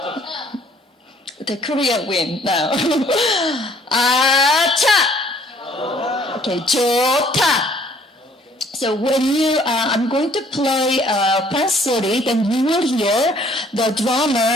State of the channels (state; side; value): normal; both; correlation 0.60